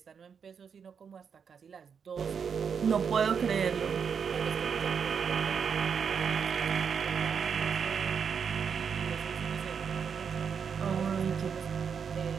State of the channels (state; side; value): quieter; left; 6.7 dB